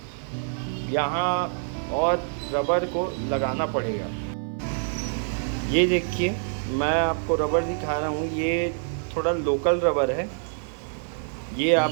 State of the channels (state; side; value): silent; left; 57 dB below the other